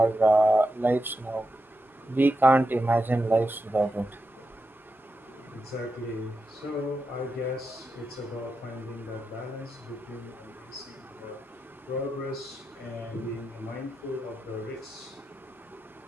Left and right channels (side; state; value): both; normal; correlation 0.88